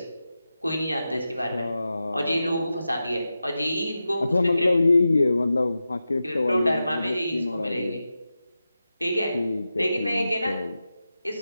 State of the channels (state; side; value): inverted; both; correlation -0.92